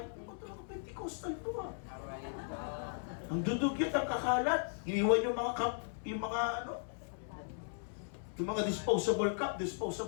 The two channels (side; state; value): right; silent; digital silence